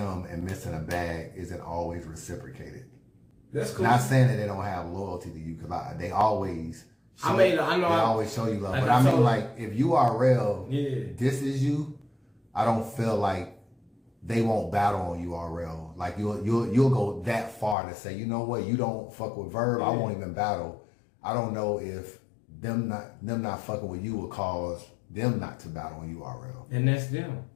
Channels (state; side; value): drops out; right; at 17.8 s